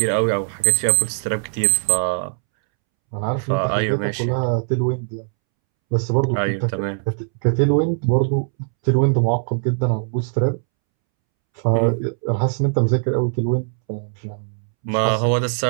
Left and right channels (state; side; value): silent; left; 65 dB below the other